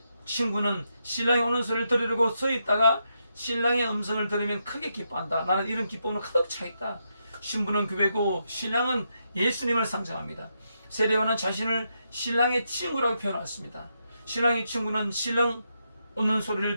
친구는 신랑이 오는 소리를 들으려고 서 있다가 신랑의 음성을 들으면 크게 기뻐한다. 나는 이런 기쁨으로 가득 차 있다. 신부는 교회고 신랑은 예수님을 상징합니다. 세례요한은 자신을 신랑의 친구라고 표현했습니다. 신랑의 친구는 신랑 오는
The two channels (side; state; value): both; inverted; correlation -0.82